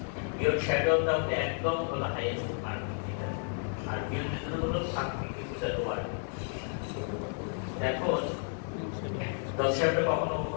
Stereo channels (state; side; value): silent; right; 56 dB below the other